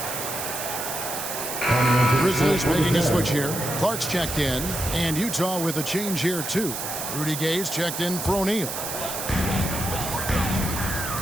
Grizzlies making a switch here. Clark's checked in. And Utah with a change here, too. Rudy Gay's checked in for O'Neal.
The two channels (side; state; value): right; noise; hiss, 5 dB below the sound